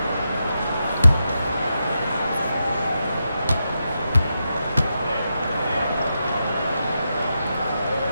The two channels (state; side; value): inverted; both; correlation -0.86